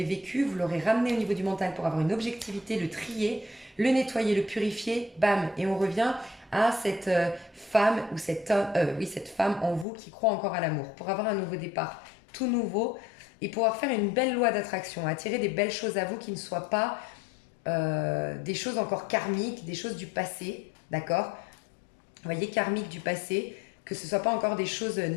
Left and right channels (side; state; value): right; drops out; at 9.9 s